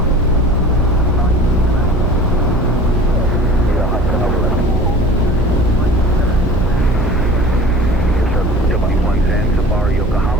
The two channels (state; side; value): noise; right; hum, 14 dB below the sound